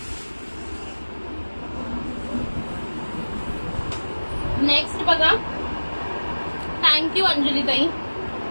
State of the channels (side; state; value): both; inverted; correlation -1.00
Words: नेक्स्ट बघा. थँक्यू अंजली ताई.